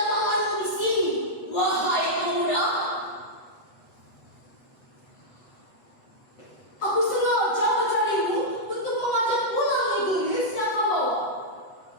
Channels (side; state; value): right; late; 8.0 ms